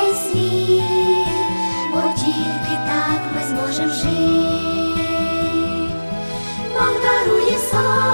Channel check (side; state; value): both; inverted; correlation -1.00